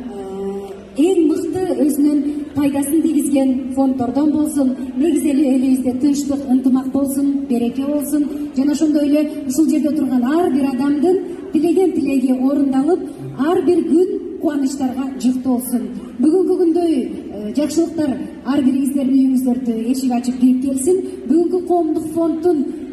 эң мыкты өзүнүн пайдасын тийгизген фонддордон болсун. Негизи эле элибизде тынчтык, ынтымак болсун, береке болсун. Жана ошондой эле ушул жерде турган ар бир адамдын тилеген тилеги орундалып, ар бир күн кубанычтарга жыктуу болсун. Бүгүнкү күндөй жакшылыктар ар бириңиздердин үйүңүздөрдү эшик ачып кирип келсин. Бүгүнкү коомдук фонддун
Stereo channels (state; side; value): identical; both; correlation 1.00